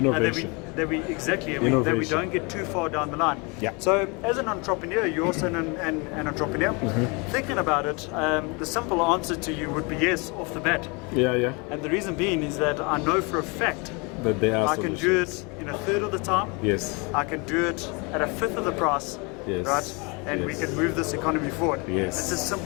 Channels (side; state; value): right; quieter; 30.0 dB